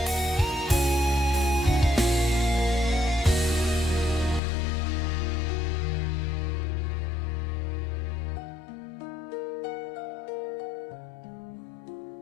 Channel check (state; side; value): drops out; right; at 4.4 s